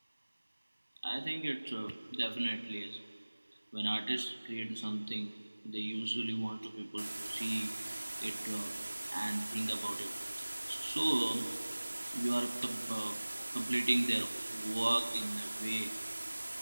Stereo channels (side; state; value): both; inverted; correlation -1.00